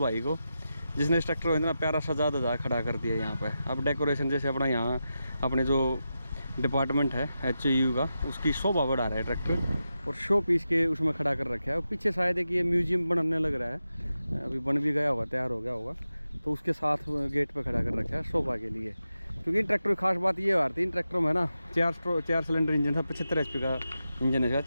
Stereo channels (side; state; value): both; inverted; correlation -0.90